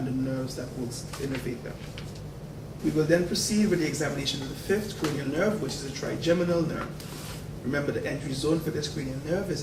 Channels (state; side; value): identical; both; correlation 1.00